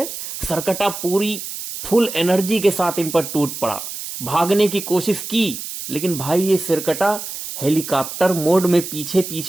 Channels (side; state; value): right; noise; hiss, 8 dB below the sound